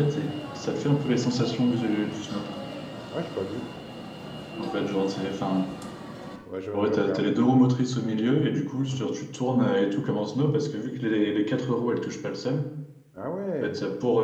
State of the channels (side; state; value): both; identical; correlation 1.00